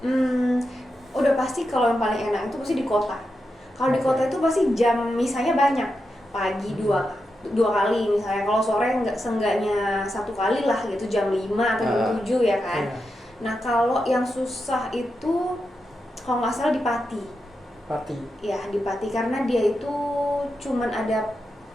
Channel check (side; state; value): both; normal; correlation 0.88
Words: Udah pasti kalau yang paling enak itu pasti di kota. Kalau di kota itu pasti jam misalnya banyak, pagi dua kali misalnya, kalau sore seenggaknya 1 kali lah gitu, jam 5 atau jam 7 ya kan. Iya. Nah kalau yang susah itu kalau nggak salah di Pati. Ya di Pati, karena dia itu cuman ada,